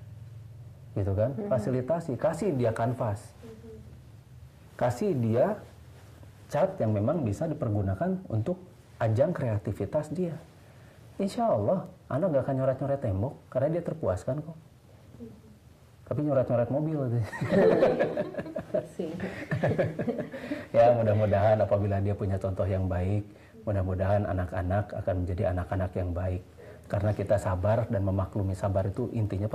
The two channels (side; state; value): both; identical; correlation 1.00